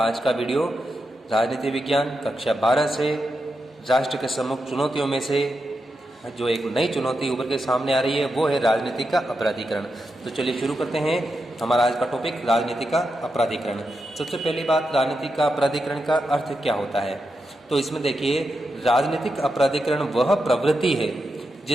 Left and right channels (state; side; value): normal; both; correlation 0.87